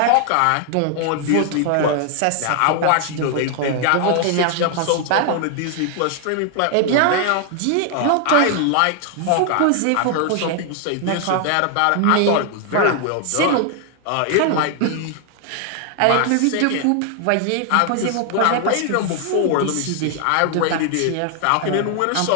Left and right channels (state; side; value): different; both; correlation 0.00